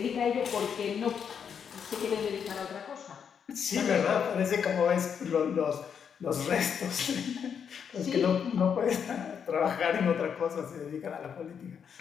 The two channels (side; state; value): right; quieter; 7.3 dB